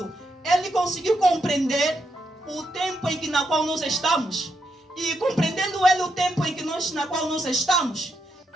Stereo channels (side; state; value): both; normal; correlation 0.81